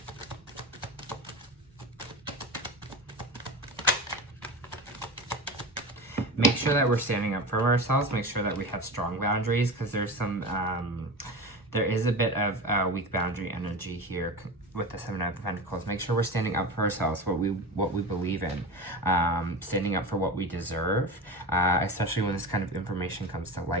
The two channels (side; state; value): both; normal; correlation 0.27